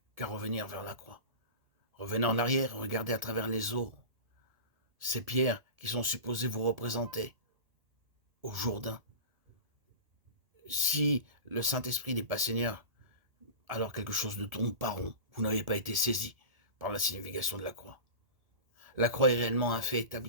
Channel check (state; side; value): late; left; 1.7 ms